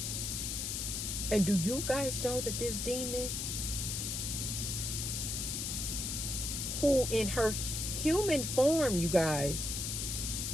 and do you guys know that this demon, who in her human form, you guys,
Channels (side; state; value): left; noise; hiss, 2 dB below the sound